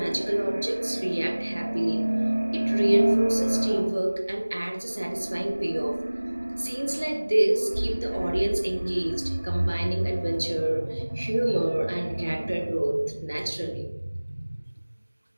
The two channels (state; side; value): inverted; both; correlation -1.00